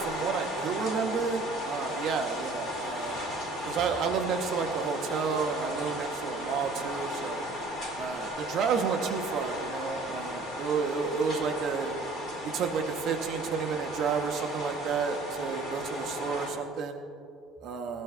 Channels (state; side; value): quieter; left; 3.6 dB